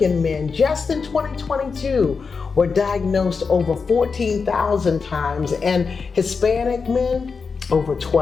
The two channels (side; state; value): right; quieter; 5.1 dB